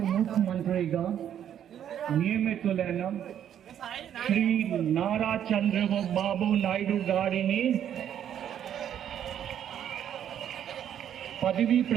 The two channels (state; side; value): quieter; left; 9.8 dB